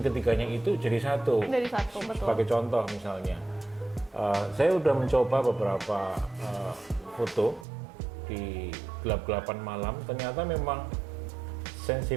ketiganya itu jadi satu. Dari satu, betul. Sebagai contoh misalnya, saya udah mencoba beberapa foto di gelap-gelapan malam, ternyata memang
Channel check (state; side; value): drops out; left; at 7.7 s